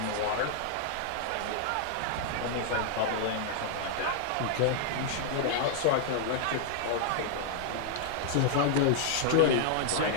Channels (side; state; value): both; different; correlation -0.01